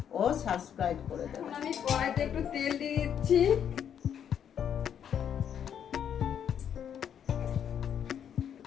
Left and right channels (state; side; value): quieter; right; 8.8 dB